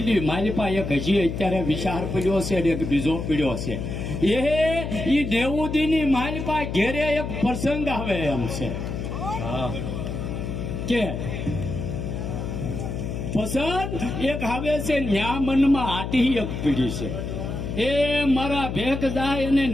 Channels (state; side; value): noise; left; hum, 5 dB below the sound